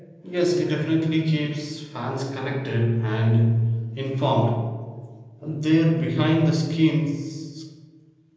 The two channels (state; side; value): identical; both; correlation 1.00